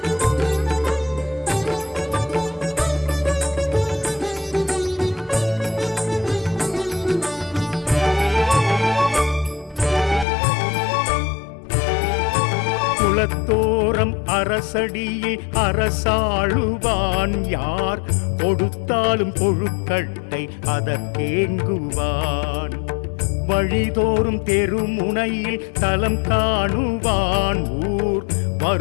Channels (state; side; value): drops out; right; at 10.2 s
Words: குலத்தோரம் அரசடியில் அரசாளுவான். யார் கொடுத்தாலும் கொழுக்கட்டை அதற்கேங்குவான். வழிதோறும் தெருமுனையில் தலம் காணுவான். ஊர்